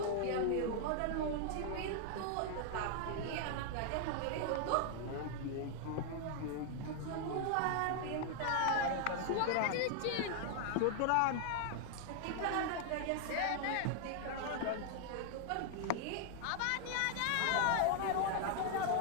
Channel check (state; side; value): different; both; correlation 0.00